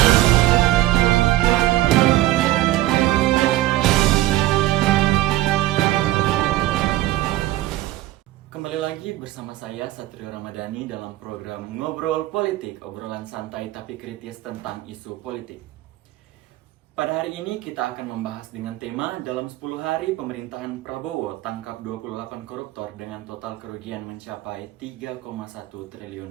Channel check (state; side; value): quieter; left; 16.1 dB